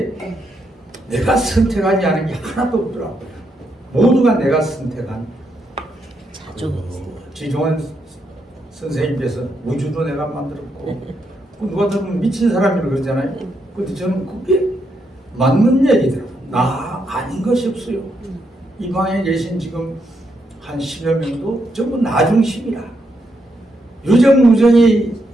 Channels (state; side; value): normal; both; correlation 0.80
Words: 내가 선택하지 않은 게 하나도 없더라고요. 모두가 내가 선택한. 지종원 선생님께서 우주도 내가 만들었고, 누가 들으면 미친 사람이라고 그러잖아요. 근데 저는 그게 맞는 얘기더라고요. 나 아닌 것이 없어요. 이 방에 계신 지금 한 10여 명도 전부 나 중심이라. 유정무정이